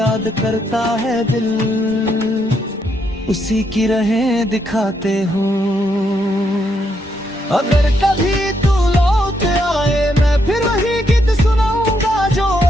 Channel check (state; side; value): normal; both; correlation 0.77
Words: करता है दिल उसी की राहें दिखाते हो। अगर कभी तू लौट आए मैं फिर वही गीत सुनाऊंगा जो